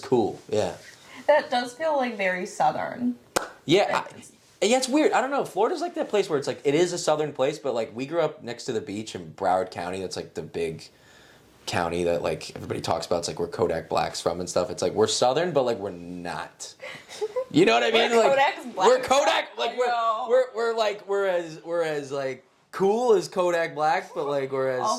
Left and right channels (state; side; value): identical; both; correlation 1.00